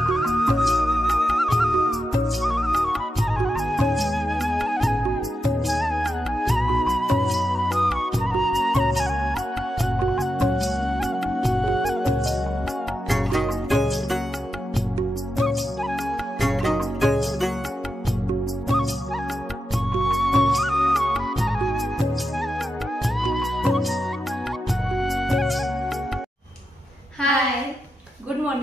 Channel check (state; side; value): normal; both; correlation 0.88